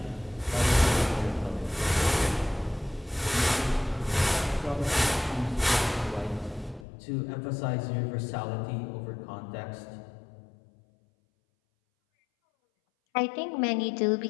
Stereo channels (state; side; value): drops out; right; at 6.9 s